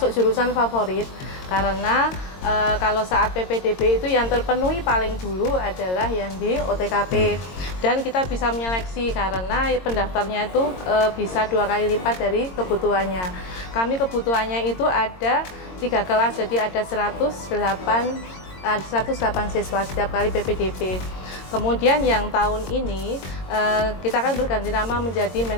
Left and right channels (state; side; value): late; right; 22 ms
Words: jurusan favorit karena kalau saat PPDB itu yang terpenuhi paling dulu adalah yang di OTKP, dan kita bisa menyeleksi karena pendaftarnya itu bisa 2 kali lipat dari kebutuhannya. Kami kebutuhannya itu ada 3 kelas, jadi ada 108 siswa setiap kali PPDB. Kemudian yang tahun ini kita akan berganti nama menjadi